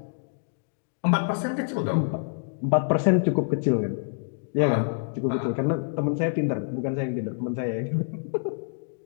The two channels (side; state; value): right; silent; digital silence